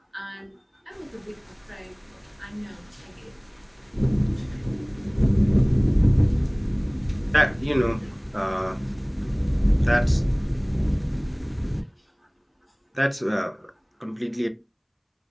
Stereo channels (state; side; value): identical; both; correlation 1.00